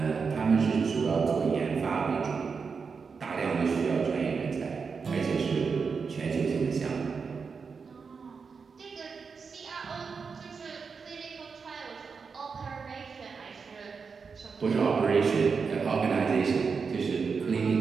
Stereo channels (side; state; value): left; quieter; 5.4 dB